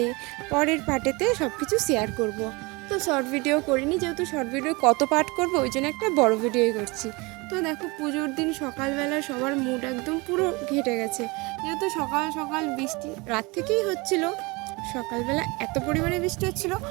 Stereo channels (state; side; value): quieter; left; 25.8 dB